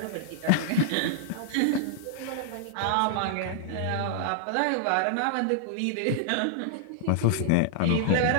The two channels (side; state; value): both; different; correlation -0.01